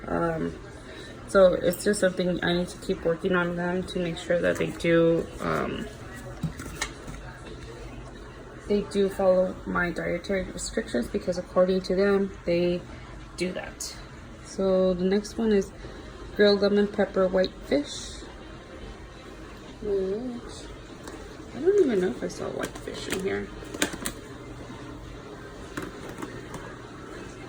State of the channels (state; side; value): identical; both; correlation 1.00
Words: So it's just something I need to keep working on them to make sure that they do follow my dietary restrictions, because according to them they do that. So the next one is grilled lemon pepper white fish, which I don't even know if I saw white fish in here.